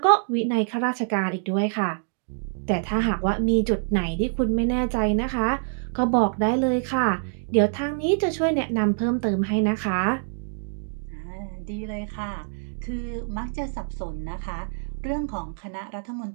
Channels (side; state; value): left; silent; 61 dB below the other